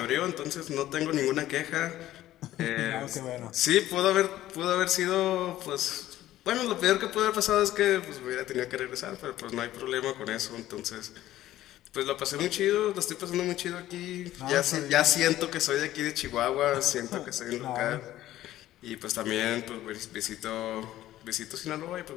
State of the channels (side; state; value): right; quieter; 14.1 dB